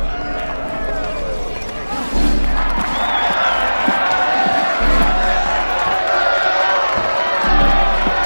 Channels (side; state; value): both; inverted; correlation -1.00